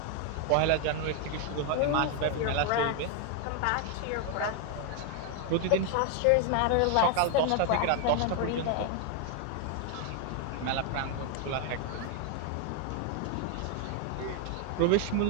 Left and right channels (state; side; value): different; both; correlation 0.00